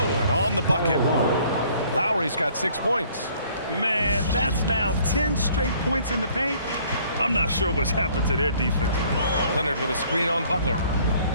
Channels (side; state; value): both; inverted; correlation -0.58